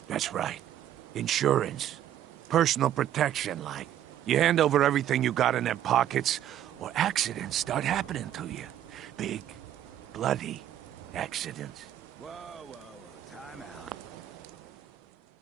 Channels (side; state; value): left; quieter; 11.3 dB